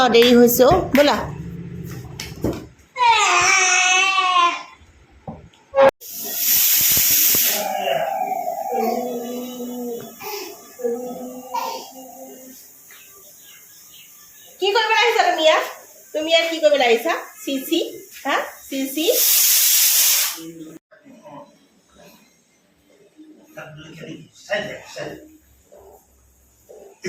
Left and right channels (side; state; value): both; identical; correlation 1.00